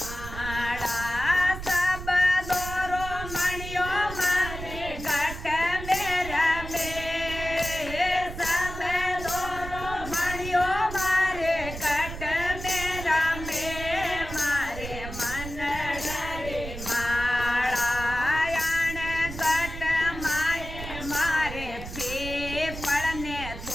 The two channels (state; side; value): noise; right; rumble, 10 dB below the sound